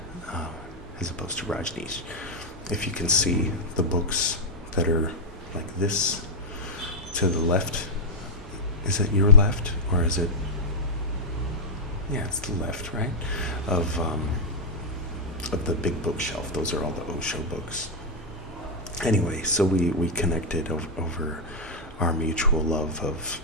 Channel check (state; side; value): normal; both; correlation -0.02